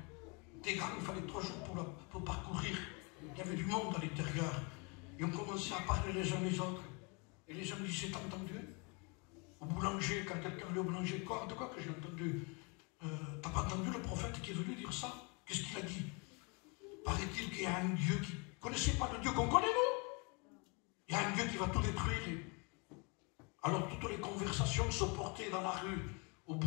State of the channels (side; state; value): right; quieter; 32.0 dB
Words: Des grands, il fallait 3 jours pour parcourir. Il y avait du monde à l'intérieur. Et on commençait à parler les uns les autres. Et les gens disaient, t'as entendu? Au boulanger, quand quelqu'un allait au boulanger, quoi, de quoi que j'ai entendu? T'as pas entendu le prophète qui est venu dire ça? Qu'est-ce qu'il a dit? Paraît-il qu'il y a un Dieu qui... Vous ne connaissez pas le Dieu qu'on connaît, nous? Il y a un Dieu qui va tout détruire. Alors toutes les conversations se portaient dans la rue, au